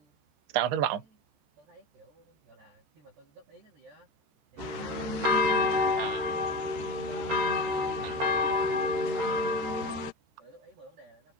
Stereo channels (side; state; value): left; late; 13 ms